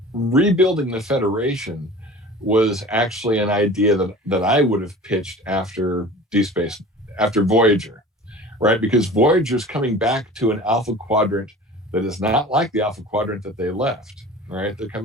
rebuilding the Federation was actually an idea that I would have pitched after after Voyager, right? Because Voyager's coming back to an Alpha Quadrant that is not like the Alpha Quadrant that they left, right? They're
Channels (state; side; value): normal; both; correlation 0.40